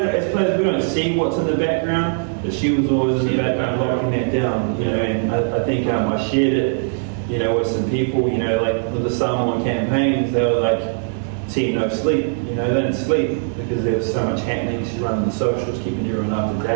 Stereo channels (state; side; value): silent; left; digital silence